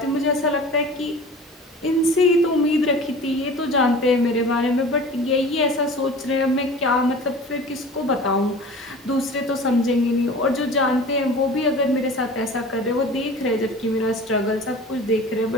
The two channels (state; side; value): normal; both; correlation 0.40